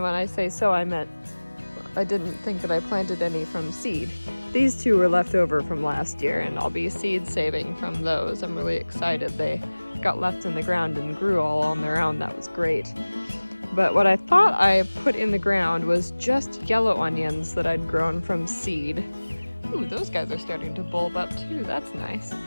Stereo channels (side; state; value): both; inverted; correlation -1.00